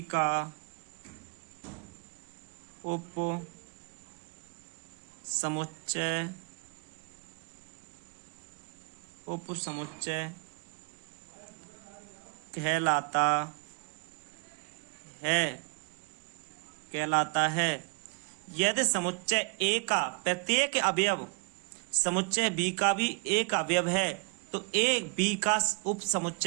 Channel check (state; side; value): quieter; left; 32.9 dB